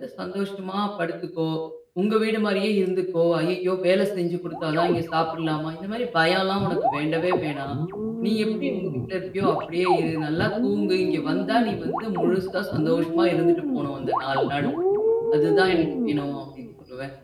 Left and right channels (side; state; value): both; identical; correlation 1.00